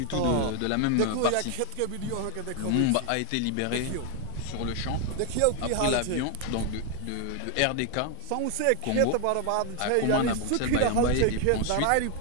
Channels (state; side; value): different; both; correlation 0.00